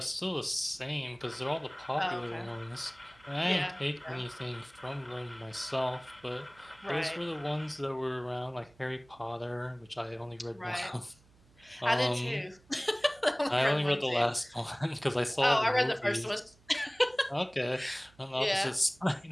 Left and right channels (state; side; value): noise; right; hum, 29 dB below the sound